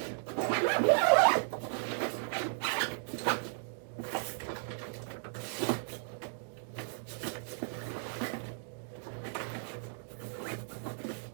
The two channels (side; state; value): left; silent; digital silence